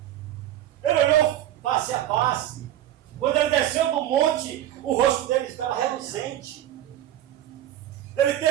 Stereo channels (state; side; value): quieter; left; 12.5 dB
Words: Ele olhou face a face. Quando ele desceu do monte, o rosto dele estava reluzente. Ele